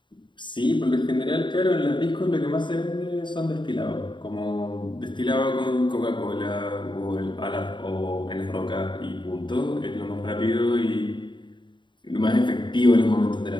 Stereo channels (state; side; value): late; right; 0.23 ms